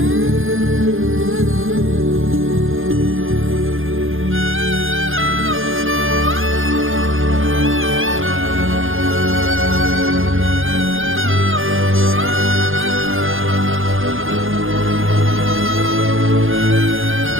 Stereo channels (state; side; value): late; left; 0.59 ms